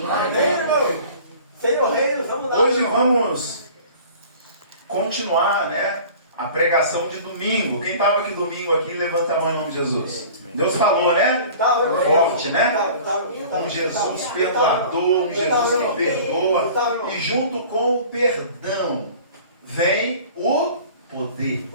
irmão. Senhor Reino, vamos lá. Hoje vamos continuar, né, a pregação de domingo. Quem estava aqui domingo aqui, levanta a mão em nome de Jesus. Deus falou, né? Forte, né? Um Jesus perdoador, um Jesus que perdoa. E junto com o perdão vem o poder.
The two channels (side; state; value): both; inverted; correlation -0.44